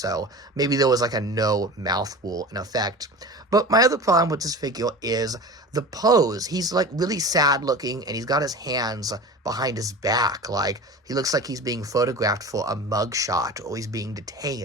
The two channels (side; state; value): both; normal; correlation 0.34